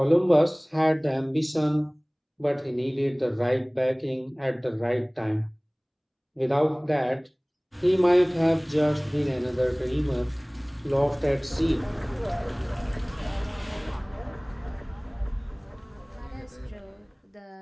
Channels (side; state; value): both; identical; correlation 1.00